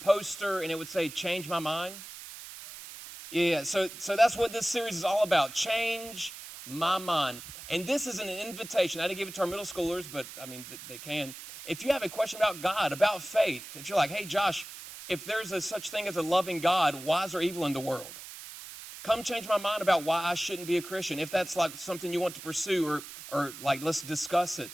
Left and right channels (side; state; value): right; noise; hiss, 13 dB below the sound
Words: and it would say, "Change my mind." Yeah, so that's what this series is all about, change my mind. And this is an invitation. I didn't give it to our middle schoolers, but, I mean, they can. If you have a question about God, about faith, if you're like, "Hey, Josh, if there's a such thing as a loving God, why is there evil in the world? Come change my mind about why I shouldn't be a Christian." If that's like something you want to pursue, or like, let's discuss it.